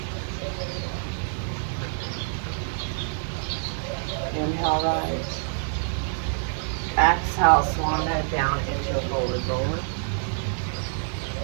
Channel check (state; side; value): silent; left; digital silence